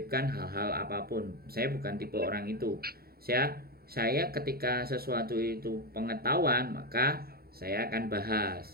hal-hal apapun. Saya bukan tipe orang itu. Saya ketika sesuatu itu pengetahuan, maka saya akan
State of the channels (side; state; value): left; late; 0.44 ms